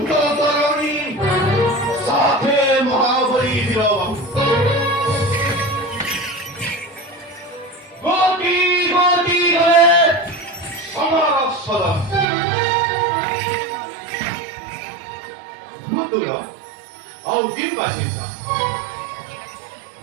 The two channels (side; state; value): left; drops out; at 12.2 s